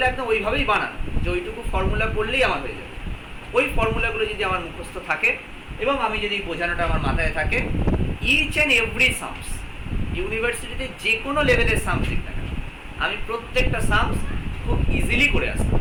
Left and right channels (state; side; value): identical; both; correlation 1.00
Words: একদম ওইভাবেই বানানো যে ওইটুকু ফর্মুলা পড়লেই আমার হয়ে যাবে। ওই ফর্মুলাগুলো যদি আমার মুখস্থ থাকে এবং আমি যদি বোঝানোটা আমার মাথায় থাকে, ইচ অ্যান্ড এভরি সামস, ইউনিভার্সিটিতে যে কোনো লেভেলের সামস লিখ না কেন, আমি প্রত্যেকটা সামস খুব ইজিলি করে আসতে